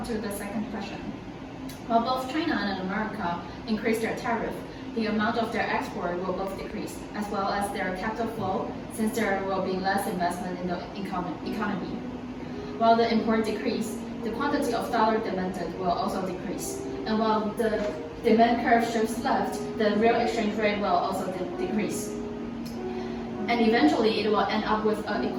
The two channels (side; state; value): both; identical; correlation 1.00